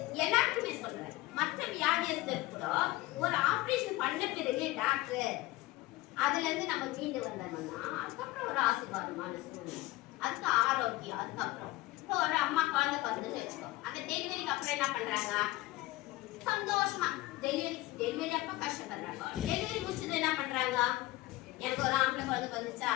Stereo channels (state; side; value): quieter; right; 18.5 dB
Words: எல்லாருக்குமே சொல்றேன். மற்ற வியாதியஸ்தர் கூட ஒரு ஆபரேஷன் பண்ண பிறகு டாக்டர் அதுல இருந்து நம்ம மீண்டு வந்தோம்னா அதுக்கப்புறம் ஒரு ஆசீர்வாதமான சூழ்நிலை, அதுக்கு ஆரோக்கியம். அதுக்கப்புறம் இப்போ ஒரு அம்மா குழந்தை பிறந்துன்னு வச்சுக்கோ, அந்த டெலிவரிக்கு அப்புறம் என்ன பண்றாங்க, சந்தோஷமா டெலிவரி அப்ப கஷ்டப்படுறாங்க. டெலிவரி முடிச்சது என்ன பண்றாங்க, எனக்கு ஒரு ஆம்பளை குழந்தை பிறந்துச்சா,